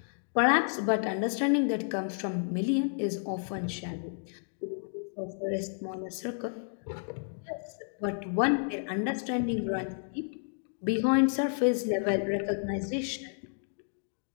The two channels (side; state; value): right; silent; digital silence